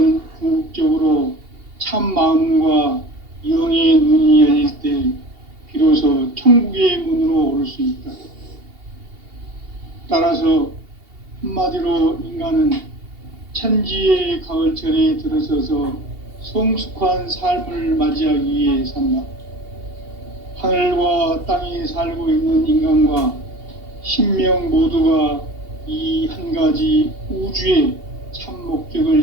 궁극적으로 참 마음과 영의 눈이 열릴 때 비로소 천국의 문으로 올 수 있다. 따라서 한마디로 인간은 천지의 가을철에 들어서서 성숙한 삶을 맞이하기 위해 산다. 하늘과 땅에 살고 있는 인간과 신명 모두가 이 한 가지 우주의 참 목적을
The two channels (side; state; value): left; late; 2.8 ms